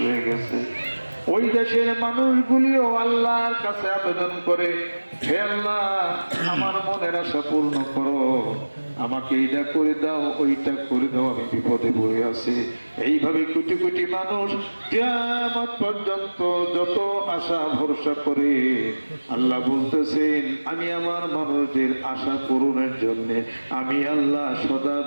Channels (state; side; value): inverted; both; correlation -1.00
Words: হয়ে গেছে। ওই দেশের মানুষগুলিও আল্লাহর কাছে আবেদন করে, হে আল্লাহ আমার মনের আশা পূর্ণ করো, আমাকে এইটা করে দাও, ওইটা করে দাও, আমি বিপদে পড়ে আছি। এইভাবে কোটি কোটি মানুষ কিয়ামত পর্যন্ত যত আশা ভরসা করে, আল্লাহ বলতেছেন আমি আমার মানুষদের আশা পূরণের জন্য আমি আল্লাহ সদা